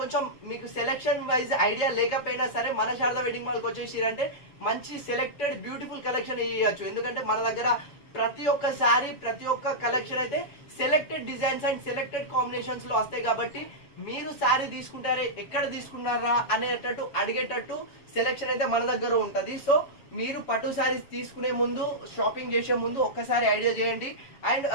మీకు సెలెక్షన్ వైజ్ ఐడియా లేకపోయినా సరే మన శారదా వెడ్డింగ్ మాల్కి వచ్చేసిరంటే మంచి సెలెక్టెడ్ బ్యూటిఫుల్ కలెక్షన్ ఇవ్వచ్చు. ఎందుకంటే మన దగ్గర ప్రతి ఒక్క శారీ, ప్రతి ఒక్క కలెక్షన్ అయితే selected designs and selected combinations లో వస్తాయి కాబట్టి మీరు శారీ తీసుకుంటారే ఎక్కడ తీసుకున్నారా అనేటట్టు అడిగేటట్టు సెలెక్షన్ అయితే మన దగ్గర ఉంటది. సో మీరు పట్టు శారీస్ తీసుకునే ముందు, షాపింగ్ చేసే ముందు ఒక్కసారి ఐడియా చేయండి. And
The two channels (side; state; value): right; late; 7.1 ms